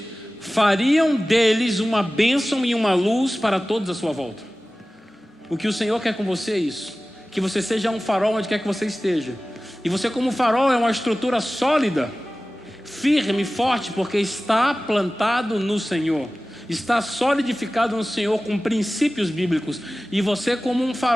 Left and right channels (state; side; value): normal; both; correlation 0.97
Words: fariam deles uma bênção e uma luz para todos à sua volta. O que o Senhor quer com você é isso: que você seja um farol onde quer que você esteja. E você, como farol, é uma estrutura sólida, firme, forte, porque está plantado no Senhor, está solidificado no Senhor com princípios bíblicos. E você, como um